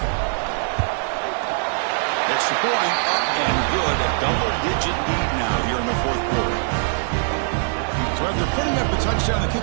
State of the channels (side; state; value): left; silent; digital silence